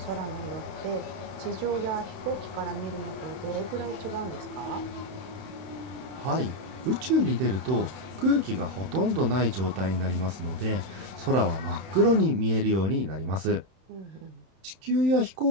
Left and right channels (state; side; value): late; left; 31 ms